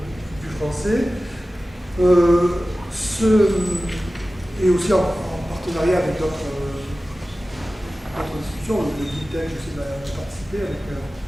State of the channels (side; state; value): both; normal; correlation 0.96